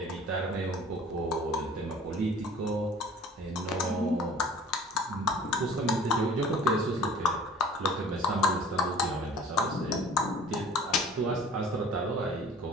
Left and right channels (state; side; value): normal; both; correlation 0.47